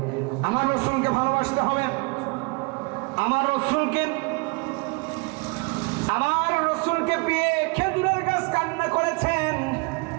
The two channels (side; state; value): left; quieter; 29.7 dB